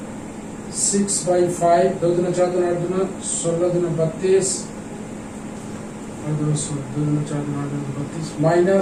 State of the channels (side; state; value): both; identical; correlation 1.00